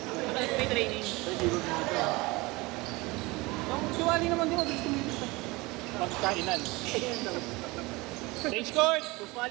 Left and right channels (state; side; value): quieter; left; 23.2 dB